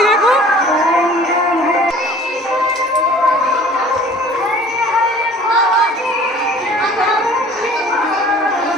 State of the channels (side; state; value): both; normal; correlation 0.48